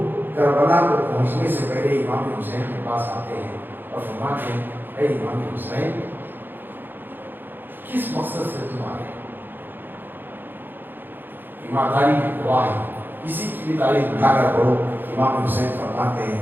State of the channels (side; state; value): left; late; 0.094 ms